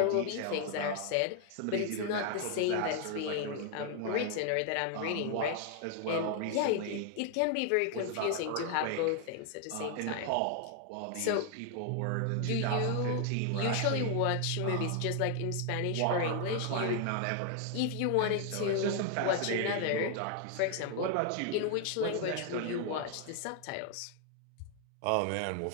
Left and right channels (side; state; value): both; different; correlation 0.00